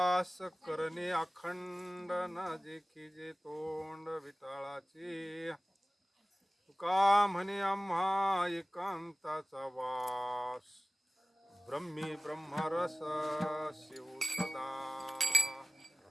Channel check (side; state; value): both; normal; correlation 0.97